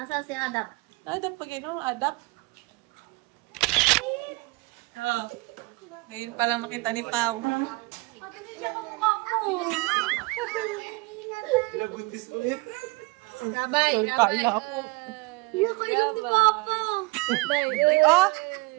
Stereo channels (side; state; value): left; quieter; 24.9 dB